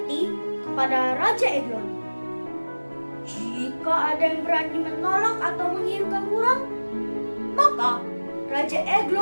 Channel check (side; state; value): both; inverted; correlation -1.00